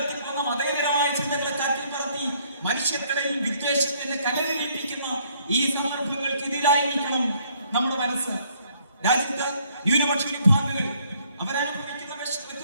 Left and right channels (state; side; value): inverted; both; correlation -0.66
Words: മതേതരമായ ചിന്തകളെ കാറ്റിൽ പറത്തി മനുഷ്യർക്കിടയിൽ വിദ്വേഷത്തിന്റെ കനലിപ്പിക്കുന്ന ഈ സന്ദർഭങ്ങൾക്കെതിരായിരിക്കണം നമ്മുടെ മനസ്സ്. രാജ്യത്ത് ന്യൂനപക്ഷ വിഭാഗങ്ങൾ അവരനുഭവിക്കുന്ന